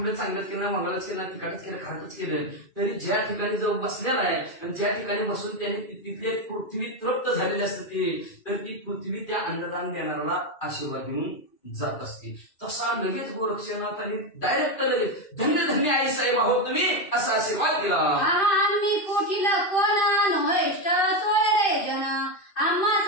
चांगलंच केलं मंगळच केलं तिखटच केलं खारटच केलं तरी ज्या ठिकाणी जाऊन बसलेला आहे आणि ज्या ठिकाणी बसून त्याने तिथले पृथ्वी तृप्त झालेली असते तर ती पृथ्वी त्या अन्नदान देणाऱ्याला आशीर्वाद देऊन जात असते. तसा लगेच गोरक्षनाथाने डायरेक्ट लगेच धन्य धन्य आई साहेब आहोत तुम्ही असा आशीर्वाद दिला. आम्ही पोटील कोण नोहेष्ट सोयरे जन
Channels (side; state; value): right; late; 2.4 ms